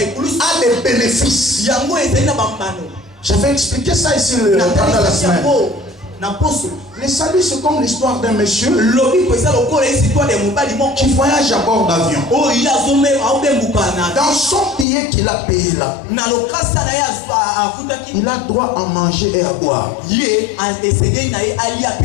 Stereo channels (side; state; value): right; drops out; at 14.9 s